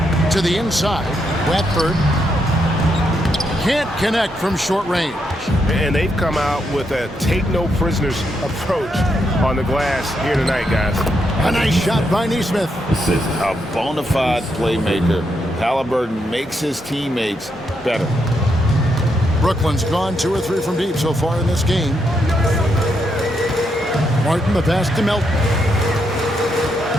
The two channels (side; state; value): both; normal; correlation 0.80